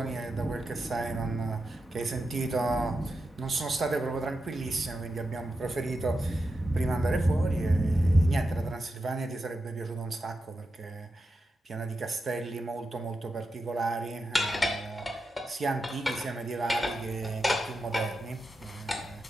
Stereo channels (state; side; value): normal; both; correlation 0.88